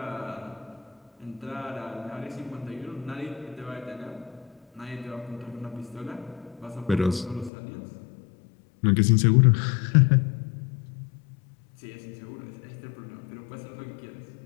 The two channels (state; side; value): drops out; right; at 7.5 s